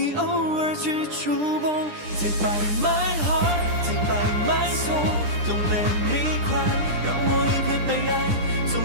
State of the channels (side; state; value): left; late; 10 ms